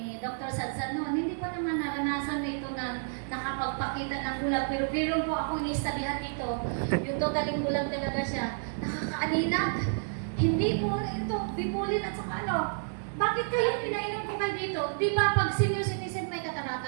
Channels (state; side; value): silent; left; 58 dB below the other